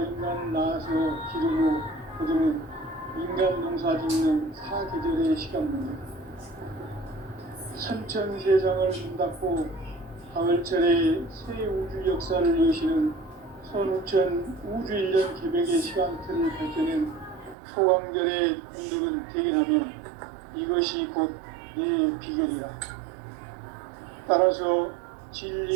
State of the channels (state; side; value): drops out; left; at 17.6 s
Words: 인간을 낳아서 기르고 거두는 인간 농사 짓는 사계절의 시간입니다. 선천세상을 문닫고 가을철에 새 우주 역사를 여시는 선우천 우주일년 개벽의 시간틀을 밝혀낸 소강절의 운동은 대견하며 이것이 곧 내 비결이다. 따라서